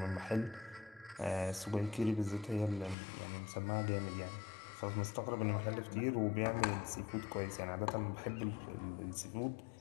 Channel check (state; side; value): drops out; right; at 3.0 s